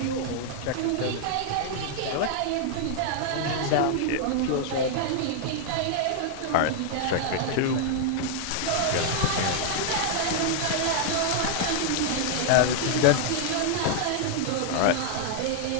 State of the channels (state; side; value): different; both; correlation 0.00